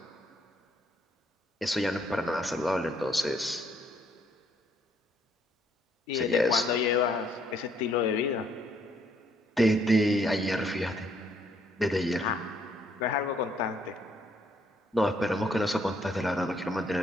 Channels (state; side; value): normal; both; correlation 0.68